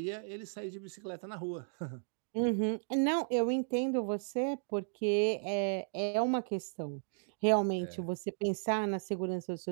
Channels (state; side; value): silent; left; digital silence